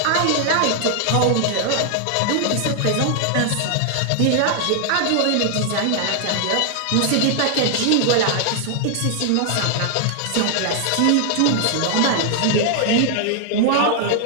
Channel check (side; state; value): both; different; correlation 0.00